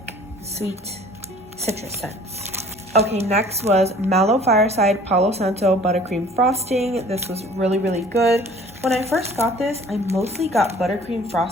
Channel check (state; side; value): normal; both; correlation 0.51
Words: sweet citrus scents. Okay, next was Mallow Fireside Palo Santo Buttercream Frosting. This was really, really good. When I first got this, I mostly got buttercream